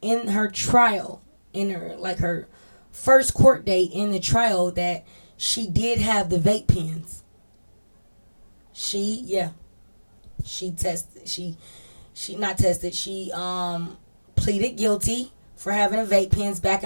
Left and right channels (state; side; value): inverted; both; correlation -1.00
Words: in her trial, in her first court date in the trial, that she did have the vape pens. She tested. She not tested. She pleaded guilty for having a vape pens back